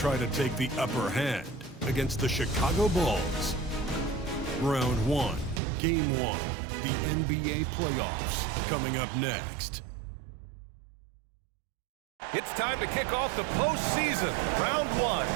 to take the upper hand against the Chicago Bulls. Round 1, Game 1, the NBA playoffs, coming up next. It's time to kick off the postseason. Round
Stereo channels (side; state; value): left; drops out; at 5.6 s